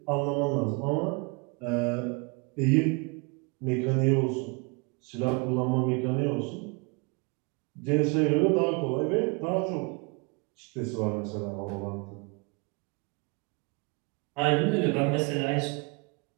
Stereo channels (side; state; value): left; quieter; 31.0 dB